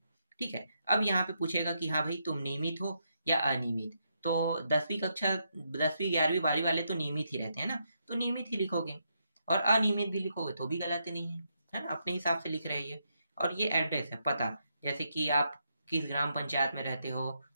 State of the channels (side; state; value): both; inverted; correlation -0.80